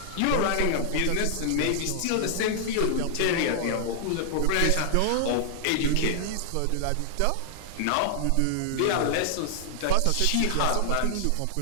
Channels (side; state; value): both; different; correlation -0.01